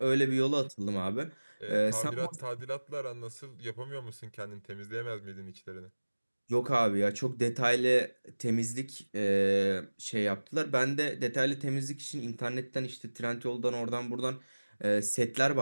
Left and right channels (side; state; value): both; inverted; correlation -1.00